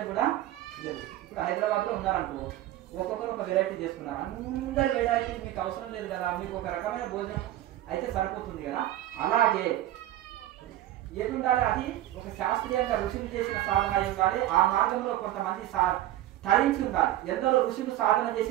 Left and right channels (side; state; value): left; quieter; 14.1 dB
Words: కూడా లేదు. ఇప్పుడు హైదరాబాద్ లో ఉన్నారనుకో, ఒక్కొక్కరు ఒక వెరైటీ చేసుకున్నారు. అందరి వెరైటీ మీకు అవసరం లేదు కదా, మీకు ఒక రకమైన భోజనం అయితే సరిపోతుంది కదా. అలాగే ఏది ఉండాలి, అది ఒక శాస్త్రీయంగా ఋషులు చేసిన సాధన అయి ఉండాలి. ఆ మార్గంలో కొంతమంది తరించి ఉండాలి. ఎందరో ఋషులు సాధన